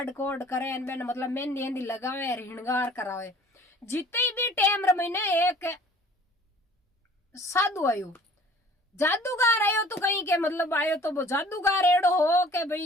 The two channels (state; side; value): normal; both; correlation 0.51